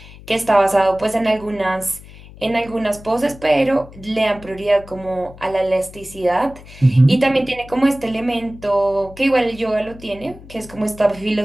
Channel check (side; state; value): left; noise; hum, 19 dB below the sound